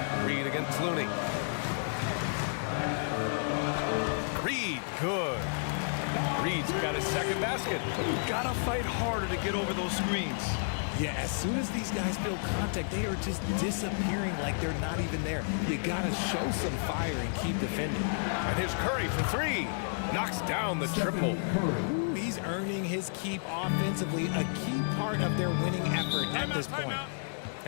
Reed against Looney. Reed, good. Reed's got his second basket. Gotta fight harder to get over those screens. Yeah, as soon as these guys feel contact, they are just disappearing like they're not even there. You gotta show some fire and keep defending. And here's Curry for 3. Knocks down the triple. He's earning his keep offensively, a key part of their winning effort at this point.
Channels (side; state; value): right; silent; digital silence